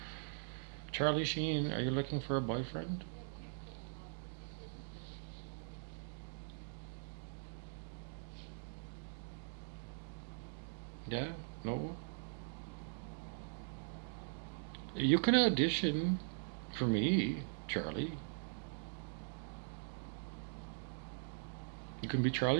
Charlie Sheen, are you looking for a boyfriend? Yeah? No? You can audition for me, Charlie. You can be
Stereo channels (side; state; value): left; silent; digital silence